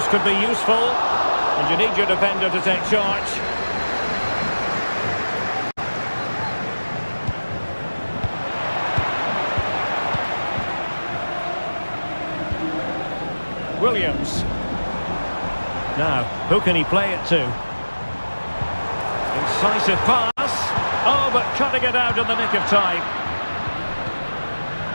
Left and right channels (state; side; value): inverted; both; correlation -1.00